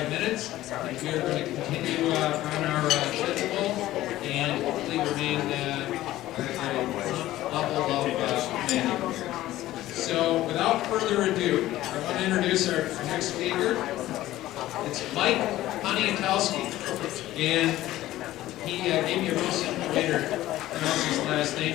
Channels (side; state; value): right; quieter; 15.3 dB